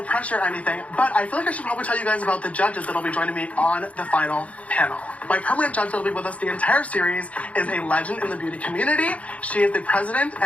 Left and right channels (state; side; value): late; right; 0.066 ms